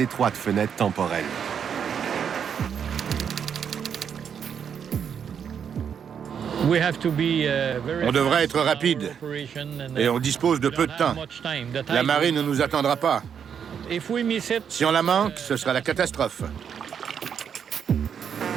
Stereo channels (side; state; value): left; quieter; 7.6 dB